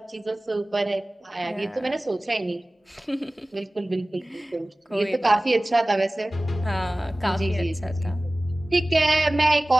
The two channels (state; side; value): normal; both; correlation 0.98